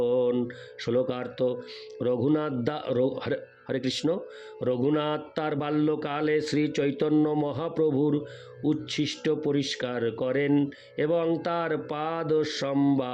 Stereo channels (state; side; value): identical; both; correlation 1.00